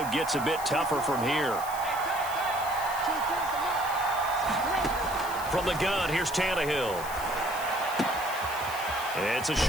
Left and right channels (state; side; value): noise; left; hiss, 12 dB below the sound